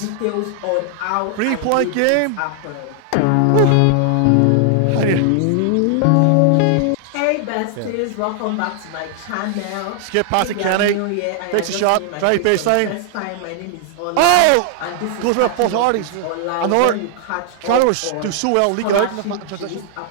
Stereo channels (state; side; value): different; both; correlation 0.00